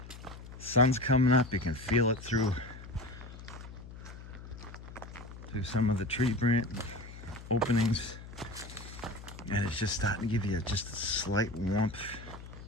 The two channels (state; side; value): noise; left; hum, 14 dB below the sound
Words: sun's coming up. You can feel it through some of the tree branch openings. And it's just starting to give you just a slight warmth.